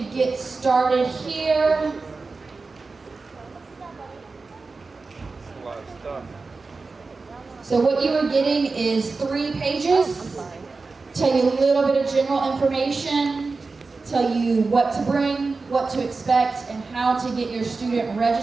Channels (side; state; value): left; quieter; 4.0 dB